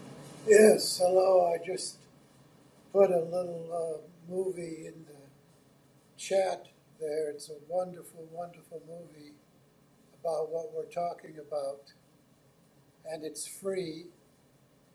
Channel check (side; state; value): both; identical; correlation 1.00